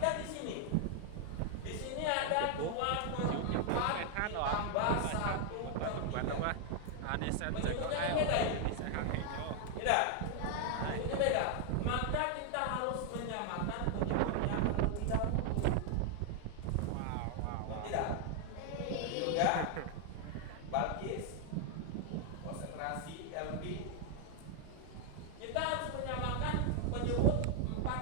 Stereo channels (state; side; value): different; both; correlation 0.00